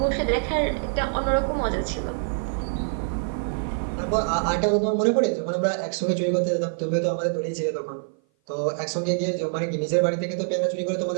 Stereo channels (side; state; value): left; silent; 56 dB below the other